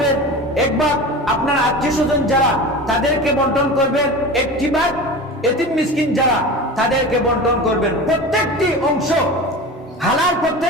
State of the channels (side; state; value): both; normal; correlation 0.31